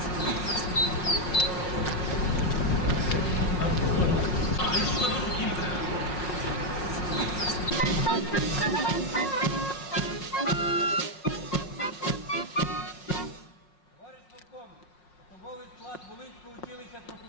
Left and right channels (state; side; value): late; right; 5.5 ms